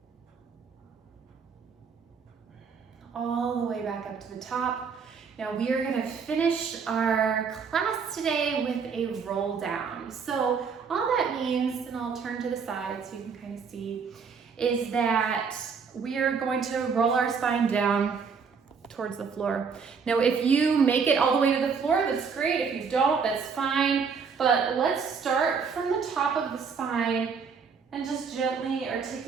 All the way back up to the top. Now we are going to finish our class today with a roll down. So all that means, and I'll turn to the side so you can kind of see, is that we are going to roll our spine down towards the floor. Now if you make it all the way to the floor, that's great. If you don't, that's fine. But let's start from the top of the spine and just gently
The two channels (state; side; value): quieter; left; 5.8 dB